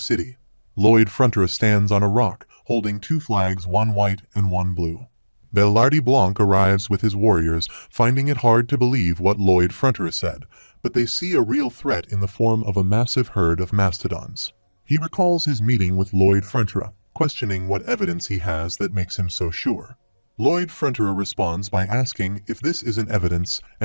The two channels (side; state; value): both; inverted; correlation -1.00